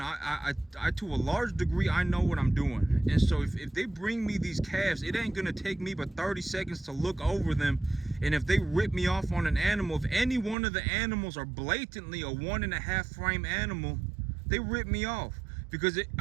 to a large degree I know what I'm doing. And so if they bring me these calves, it ain't gonna take me but 30 seconds to look over them. And if they rip me off on an animal, if any one of the animals are blatantly a 1.5 frame animal, they rip me off. Because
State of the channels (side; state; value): left; drops out; at 10.6 s